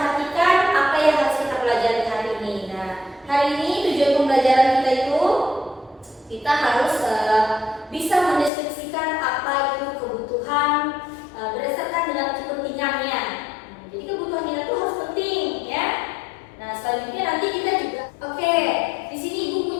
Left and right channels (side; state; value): right; drops out; at 8.5 s